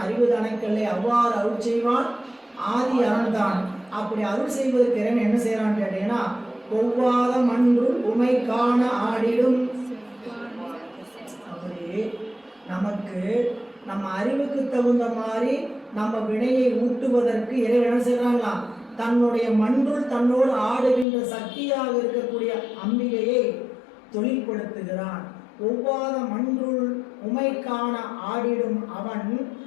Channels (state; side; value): drops out; right; at 21.1 s